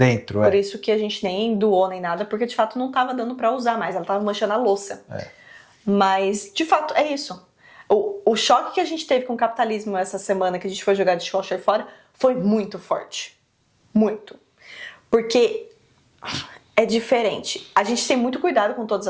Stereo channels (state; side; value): identical; both; correlation 1.00